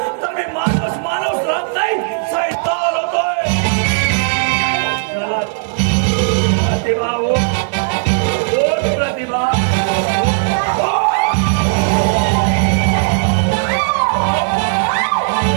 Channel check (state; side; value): silent; left; 57 dB below the other